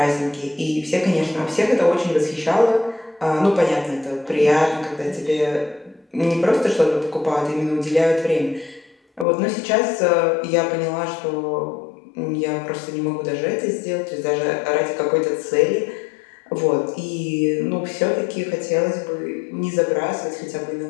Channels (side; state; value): right; drops out; at 9.2 s